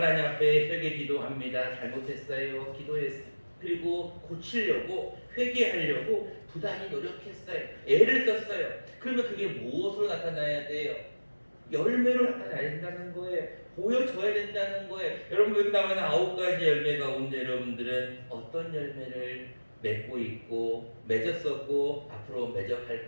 앞에 회개 기도합니다. 잘못했어요. 기도했어요. 그리고 고치려고, 회개하려고 부단히 노력했어요. 애를 썼어요. 그러면 그게 무엇으로 나타나야 돼요? 열매로 나타나야 된다는 거예요. 보여줘야 된다는 거예요. 여러분, 여기 나오는 9가지 열매 가운데 여러분들은 어떤 열매를 맺고 있고 맺었었고 앞으로 맺어갈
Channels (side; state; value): both; inverted; correlation -1.00